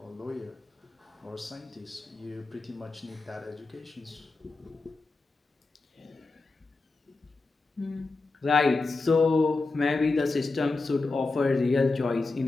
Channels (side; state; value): right; quieter; 3.6 dB